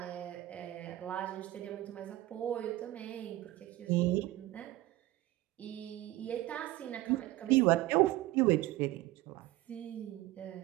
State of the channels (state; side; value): quieter; left; 16.9 dB